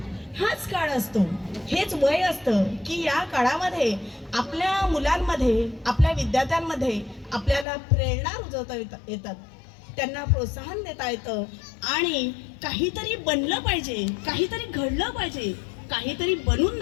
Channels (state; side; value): drops out; right; at 7.7 s